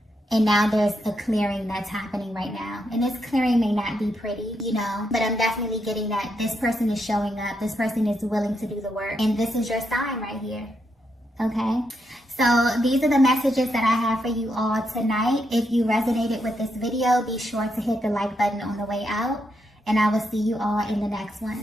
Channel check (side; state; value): both; normal; correlation 0.81